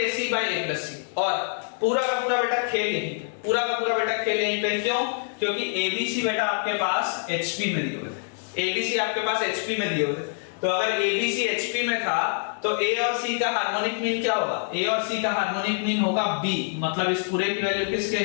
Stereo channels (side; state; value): right; silent; digital silence